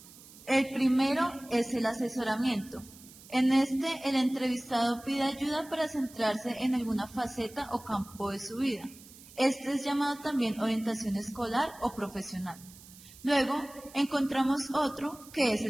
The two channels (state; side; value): noise; right; hiss, 20 dB below the sound